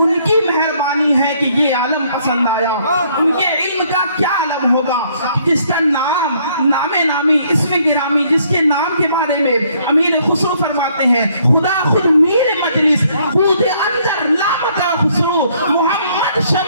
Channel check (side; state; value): both; inverted; correlation -0.66